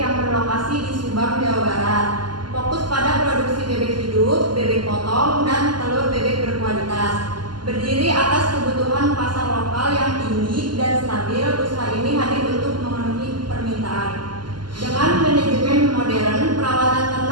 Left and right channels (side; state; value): left; late; 0.71 ms